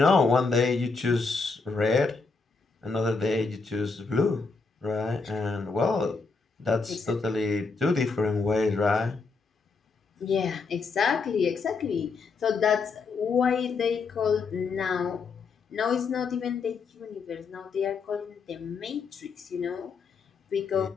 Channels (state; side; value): quieter; right; 4.4 dB